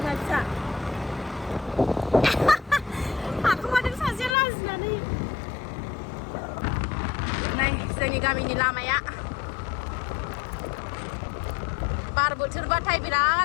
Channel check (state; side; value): drops out; right; at 4.4 s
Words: फिसा हाखुमादों सासेया लाजिनानै नै जोंनि गामिनि लामाया बार बोथोरबाथाय